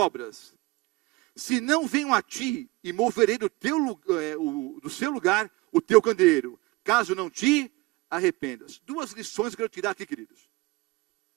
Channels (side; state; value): left; quieter; 21.7 dB